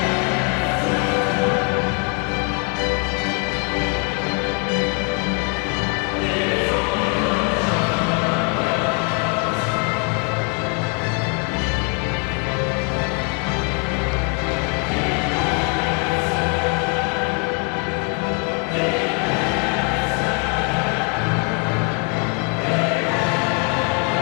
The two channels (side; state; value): right; quieter; 34.3 dB